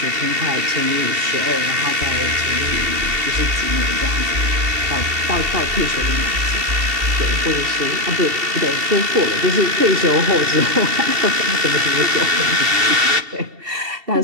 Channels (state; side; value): late; left; 2.7 ms